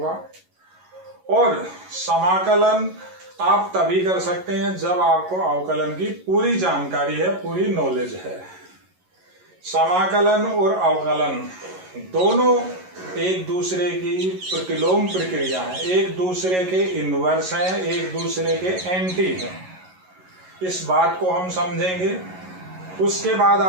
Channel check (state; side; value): late; left; 11 ms